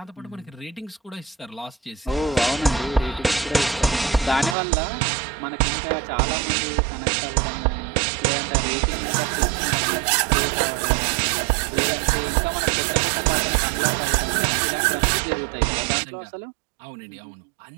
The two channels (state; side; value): drops out; left; at 4.5 s